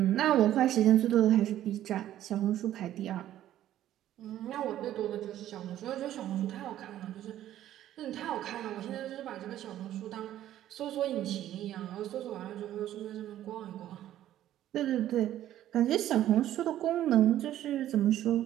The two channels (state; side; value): quieter; left; 12.5 dB